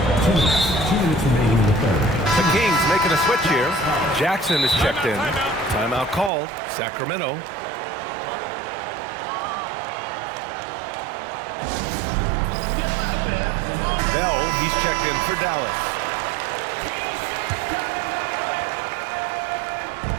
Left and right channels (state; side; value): drops out; left; at 6.3 s